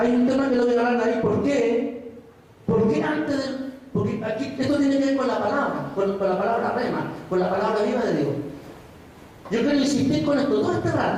un tema que lo voy a hablar ahí. ¿Por qué? Porque antes de... Porque aquí esto tiene que ver con la palabra, con la palabra rema, con la palabra viva de Dios. Yo quiero insistir con esto todo este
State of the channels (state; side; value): identical; both; correlation 1.00